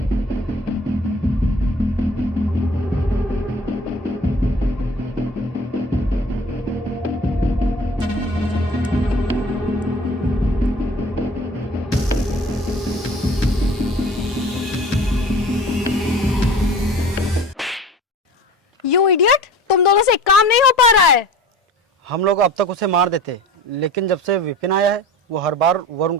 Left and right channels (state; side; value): normal; both; correlation 0.42